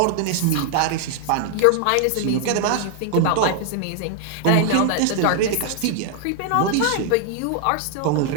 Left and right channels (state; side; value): different; both; correlation 0.00